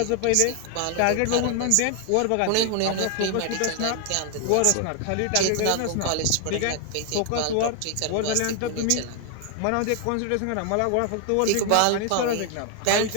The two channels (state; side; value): different; both; correlation 0.00